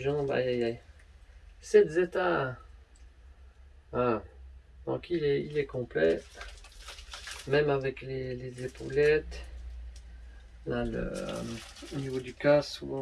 aïe aïe aïe. 7 zeta. Ah. Donc il est complet, même avec les épaulettes. Là, au niveau du casque,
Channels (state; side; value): identical; both; correlation 1.00